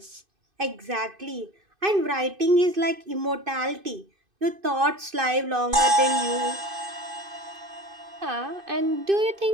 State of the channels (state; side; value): late; left; 2.5 ms